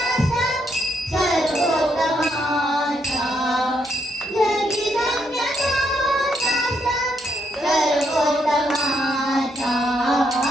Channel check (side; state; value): both; normal; correlation 0.76